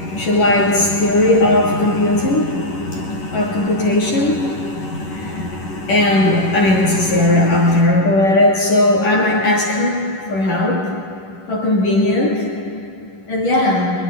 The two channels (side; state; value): right; late; 11 ms